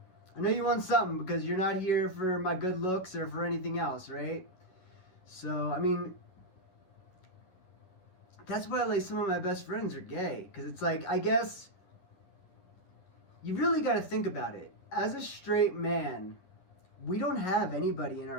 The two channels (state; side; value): late; right; 11 ms